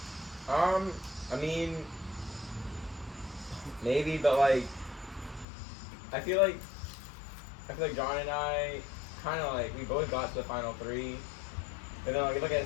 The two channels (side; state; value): right; drops out; at 5.5 s